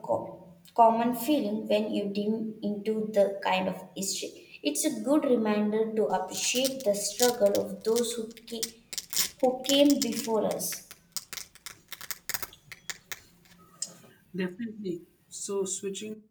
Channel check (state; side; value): identical; both; correlation 1.00